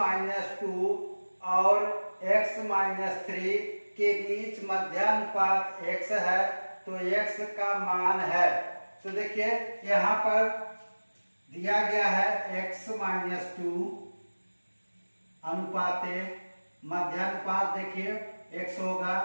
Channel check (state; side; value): inverted; both; correlation -1.00